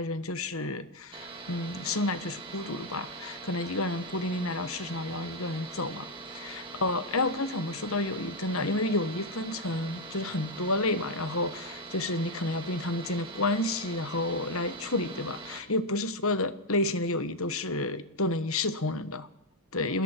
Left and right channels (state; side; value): normal; both; correlation 0.02